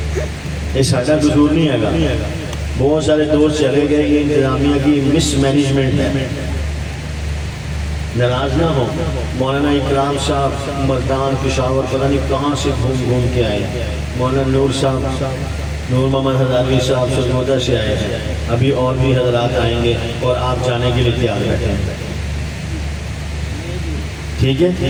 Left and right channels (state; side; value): identical; both; correlation 1.00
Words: یہ ساڈا قصور نہیں ہے گا، بہت سارے دوست چلے گئے، یہ انتظامیہ کی مس مینجمنٹ ہے۔ ناراض نہ ہو، مولانا اکرام صاحب مردان پشاور پتہ نہیں کہاں سے گھوم کے آئے، مولانا نور صاحب، نور محمد ہزاروی صاحب سرگودا سے آئے ہیں، ابھی اور بھی حضرات آئیں گے اور آپ جانے کے لیے تیار بیٹھے ہیں۔ ٹھیک